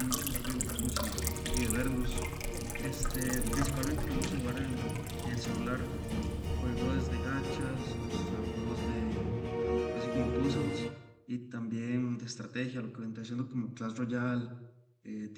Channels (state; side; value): identical; both; correlation 1.00